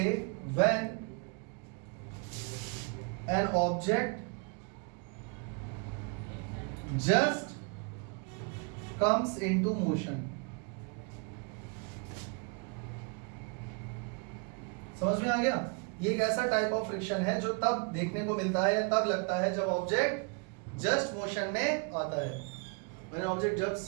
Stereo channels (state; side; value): quieter; left; 34.8 dB